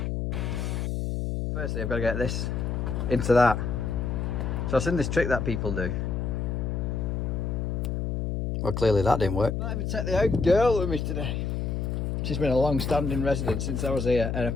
Firstly, I've got to get this into that. So I've seen this trick that people do. Well, clearly that didn't work. Might even take the old girl with me today. She's been a long-standing resident since I was an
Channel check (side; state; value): left; noise; hum, 1 dB below the sound